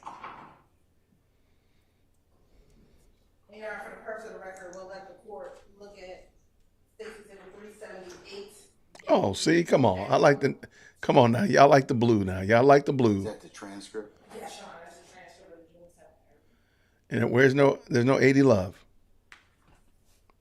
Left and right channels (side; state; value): both; identical; correlation 1.00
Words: Your Honor, for the purpose of the record, we'll let the court look at Stacey Exhibit 378. Oh, see, come on. Come on now. Y'all like the blue now. Y'all like the Is blue. that the transcript? Yes, Your Honor, that's a transcript of the June 7th. And there's no 80 love.